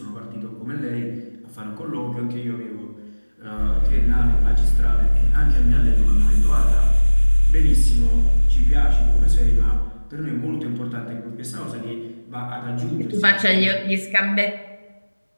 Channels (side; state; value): both; inverted; correlation -1.00